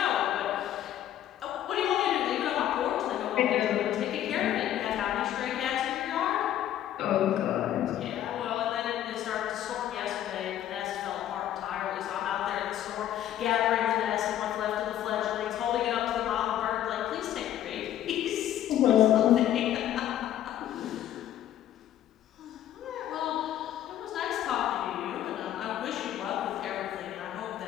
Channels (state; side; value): quieter; right; 11.7 dB